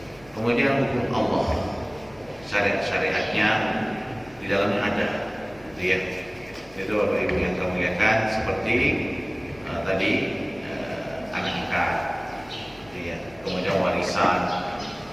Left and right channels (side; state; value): left; noise; rumble, 25 dB below the sound